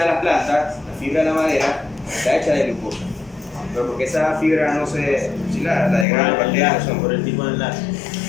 de las plantas, la fibra de la madera, está hecha de glucosa. Pero porque esa fibra no se, si la degrada las bacterias no son. Por el tipo de enlace.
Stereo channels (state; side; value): drops out; right; at 6.1 s